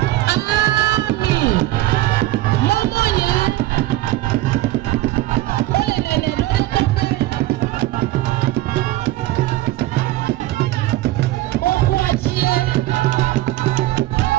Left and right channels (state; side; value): quieter; left; 16.3 dB